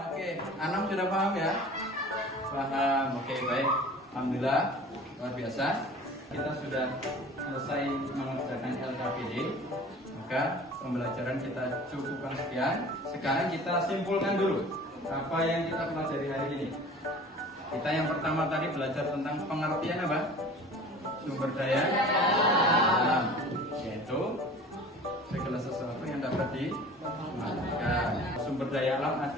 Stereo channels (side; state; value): both; normal; correlation 0.43